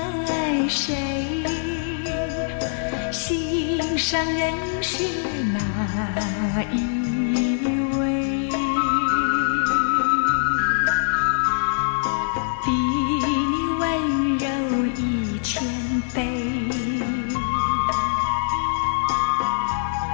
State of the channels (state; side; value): silent; right; digital silence